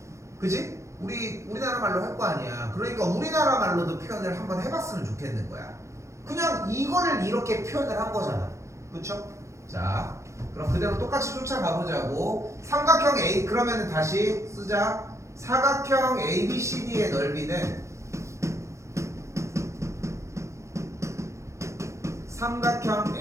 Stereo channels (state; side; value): late; left; 0.14 ms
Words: 그지? 우리나라 말로 할 거 아니야. 그러니까 우리나라 말로도 표현을 한번 해봤으면 좋겠는 거야. 그냥 이거를 이렇게 표현을 한 거잖아. 그쵸? 자, 그럼 그대로 똑같이 쫓아가 보자고. 삼각형 A, 그러면 다시 쓰자. 사각형 ABCD의 넓이는 삼각형